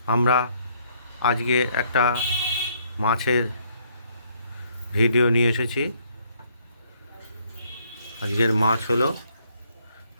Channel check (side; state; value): both; inverted; correlation -0.68